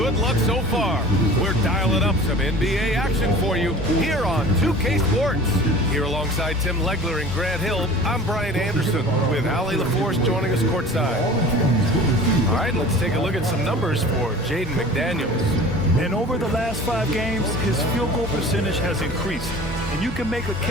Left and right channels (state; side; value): normal; both; correlation 0.42